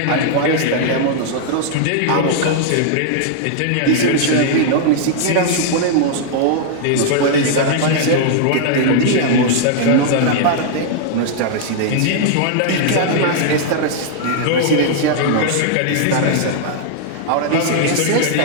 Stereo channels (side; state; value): both; different; correlation -0.01